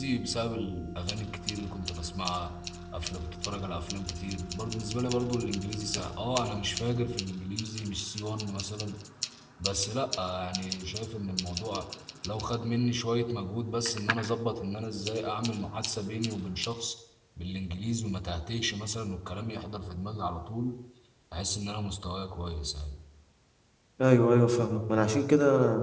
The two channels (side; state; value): both; identical; correlation 1.00